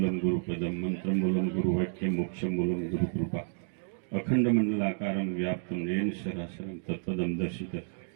ગુરુ પદમ મંત્ર મૂલમ ગુરુ વાક્ય મોક્ષ મૂલમ ગુરુ કૃપા અખંડ મંડલાકારમ વ્યાપ્તમ યેન સરાસરમ તત્પદમ દર્શિત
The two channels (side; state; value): left; silent; digital silence